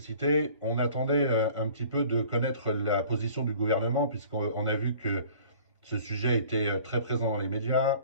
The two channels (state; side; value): inverted; both; correlation -0.49